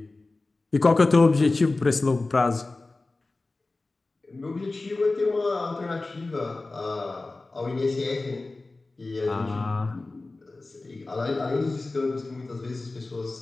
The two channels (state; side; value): quieter; right; 3.3 dB